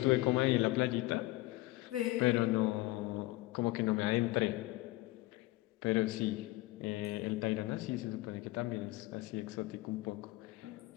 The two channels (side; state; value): right; quieter; 19.2 dB